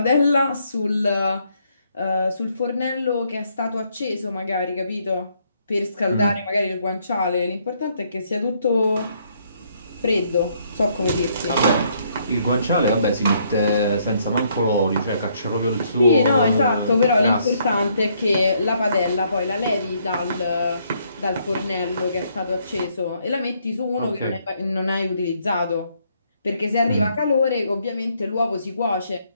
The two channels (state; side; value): inverted; both; correlation -0.71